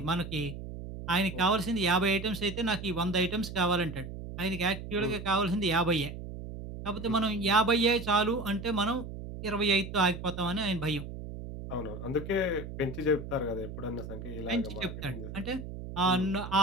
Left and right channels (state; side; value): noise; right; hum, 9 dB below the sound